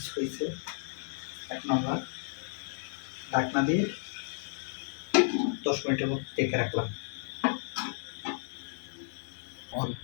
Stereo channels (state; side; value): silent; right; digital silence